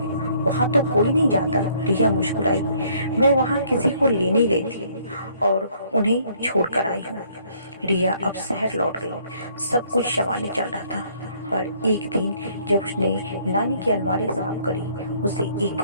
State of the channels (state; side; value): inverted; both; correlation -0.63